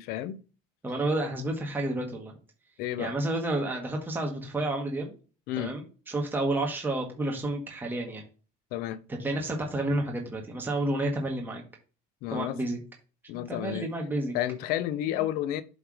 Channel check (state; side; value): normal; both; correlation 0.56